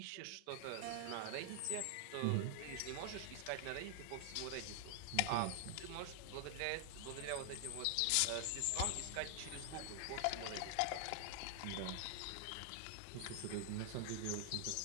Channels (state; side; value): different; both; correlation 0.00